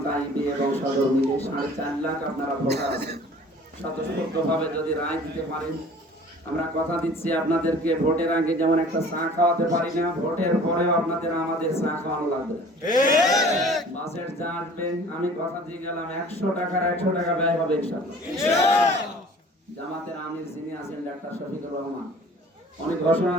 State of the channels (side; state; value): both; normal; correlation 0.48